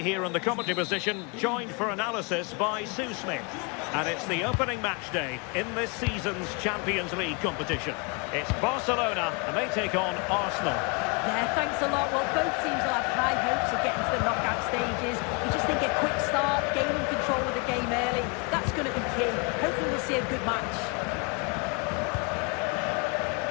here in the commentary position, joined for analysis by Sue Smith. And it's the opening match day in this season's Champions League competition. It's Barcelona, and they take on Arsenal. Yeah, thanks a lot. Well, both teams will have high hopes of getting to the knockout stages. You just think a quick start, gaining control of the game early, that's going to be key. Hopefully we'll see a good match.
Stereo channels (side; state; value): right; quieter; 32.3 dB